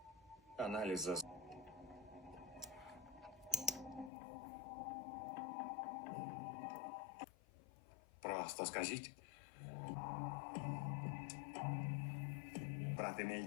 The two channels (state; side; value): drops out; right; at 4.1 s